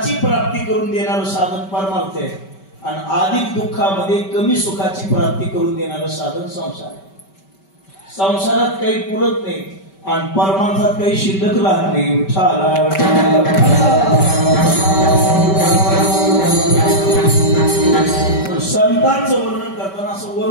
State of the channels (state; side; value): late; right; 5.2 ms